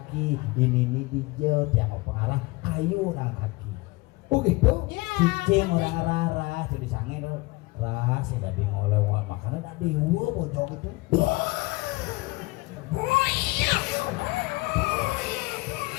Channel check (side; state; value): right; quieter; 22.9 dB